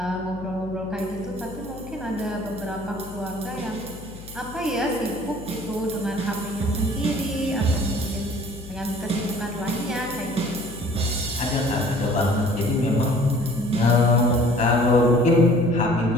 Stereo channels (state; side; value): noise; left; hum, 16 dB below the sound